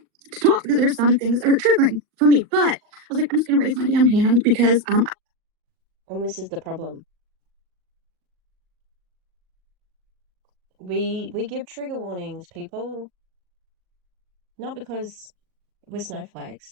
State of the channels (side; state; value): left; late; 39 ms